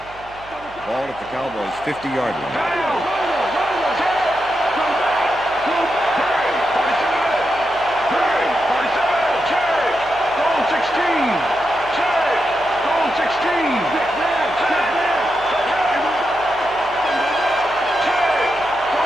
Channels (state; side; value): noise; right; hum, 22 dB below the sound